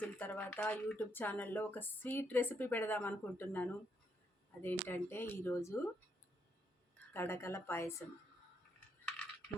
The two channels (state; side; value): normal; both; correlation 0.76